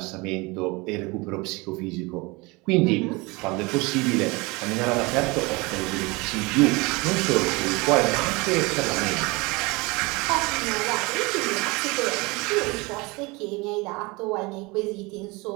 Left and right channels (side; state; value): left; quieter; 25.3 dB